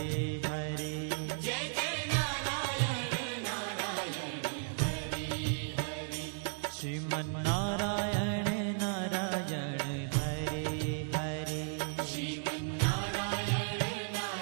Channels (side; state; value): left; silent; digital silence